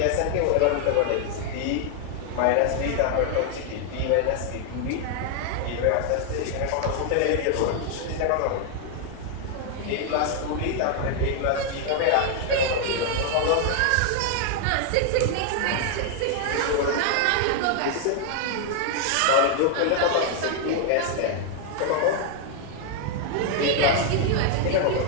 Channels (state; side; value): different; both; correlation 0.00